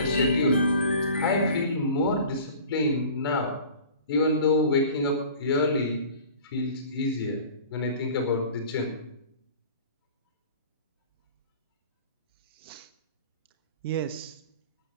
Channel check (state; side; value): inverted; both; correlation -0.43